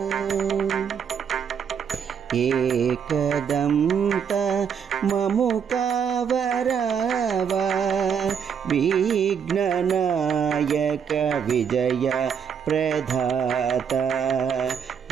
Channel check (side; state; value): left; quieter; 7.4 dB